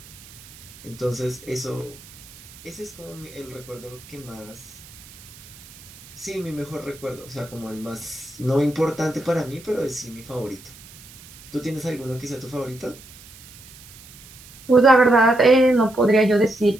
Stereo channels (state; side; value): noise; right; hiss, 20 dB below the sound